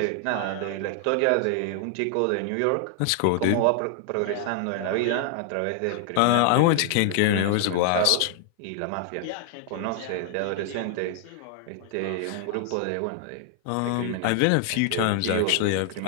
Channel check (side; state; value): both; different; correlation 0.00